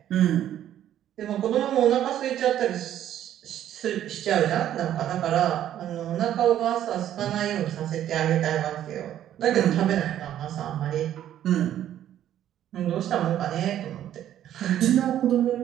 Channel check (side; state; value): left; quieter; 11.4 dB